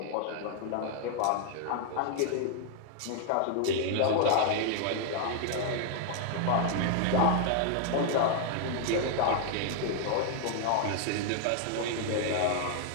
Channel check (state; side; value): different; both; correlation 0.00